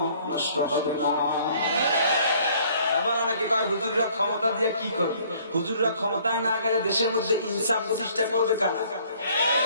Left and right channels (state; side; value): inverted; both; correlation -0.58